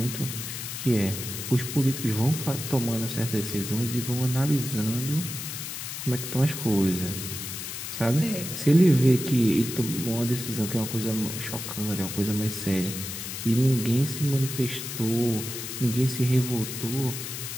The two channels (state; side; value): noise; left; hiss, 7 dB below the sound